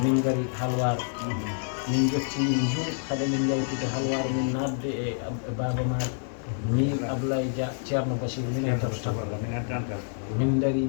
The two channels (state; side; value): silent; right; digital silence